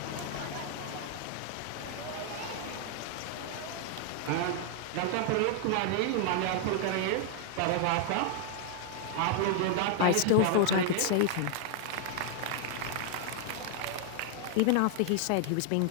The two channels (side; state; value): both; different; correlation 0.00